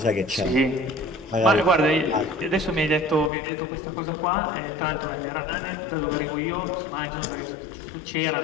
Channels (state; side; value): drops out; right; at 3.3 s